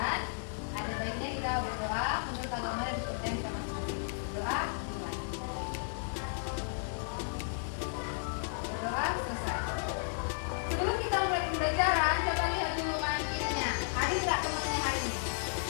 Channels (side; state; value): right; silent; 55 dB below the other